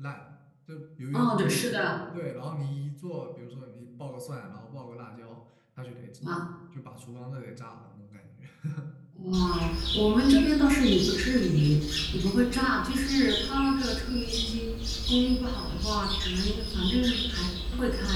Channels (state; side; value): identical; both; correlation 1.00